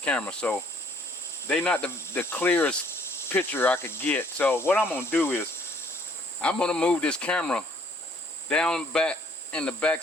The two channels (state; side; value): normal; both; correlation 0.62